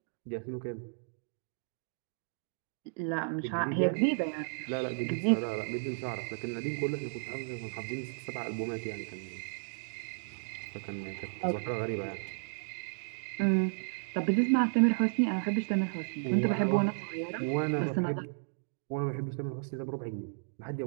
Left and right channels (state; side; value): silent; left; digital silence